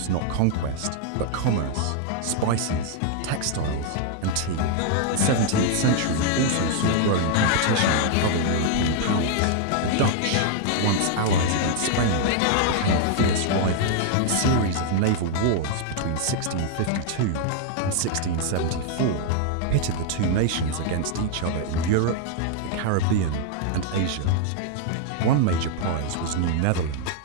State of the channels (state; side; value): different; both; correlation 0.00